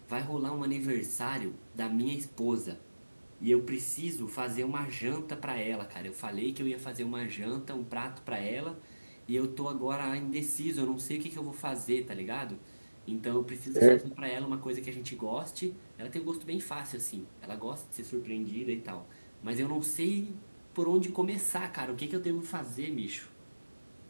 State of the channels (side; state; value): both; inverted; correlation -1.00